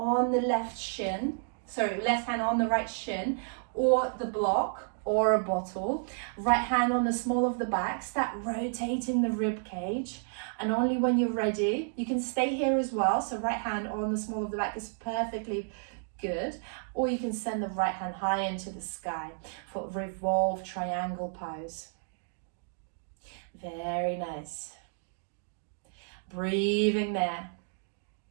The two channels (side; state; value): left; silent; digital silence